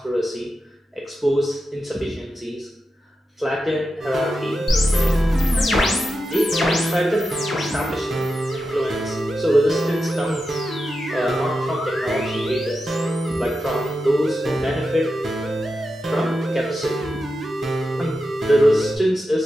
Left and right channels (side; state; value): both; normal; correlation 0.89